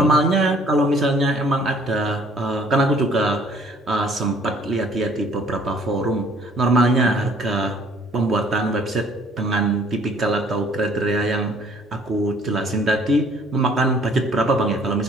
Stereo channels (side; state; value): both; normal; correlation 0.58